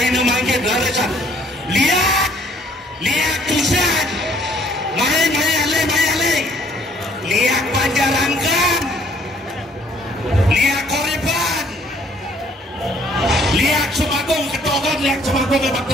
mangke laresan lihat tusan mayale lihat panjarangkan lihat koriban lihat semagung ketokan lihat semagung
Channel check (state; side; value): normal; both; correlation 0.62